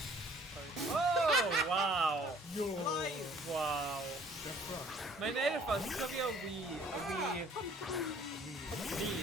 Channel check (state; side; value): normal; both; correlation 0.56